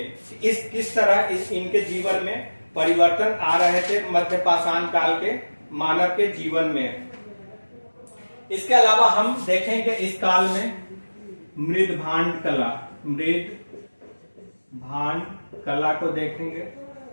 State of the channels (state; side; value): inverted; both; correlation -1.00